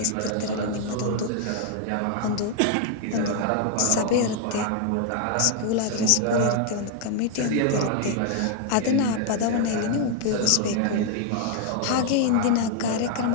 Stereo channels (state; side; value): different; both; correlation 0.00